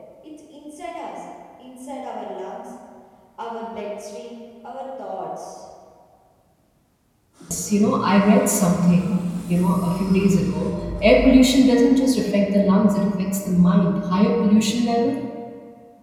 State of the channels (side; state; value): both; identical; correlation 1.00